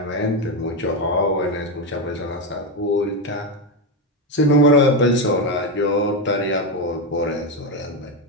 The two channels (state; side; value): normal; both; correlation 0.10